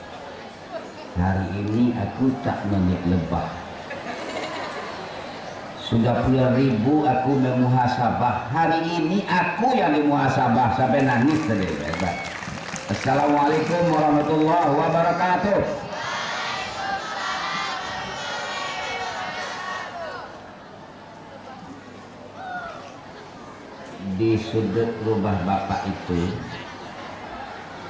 Hari ini aku tak menik lebah. Sudah puluhan ribu aku memuhasabah. Hari ini aku yang dimuhasabah sampai nangis tadi. Assalamualaikum warahmatullahi wabarakatuh. Di sudut rumah bapak itu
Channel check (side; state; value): both; identical; correlation 1.00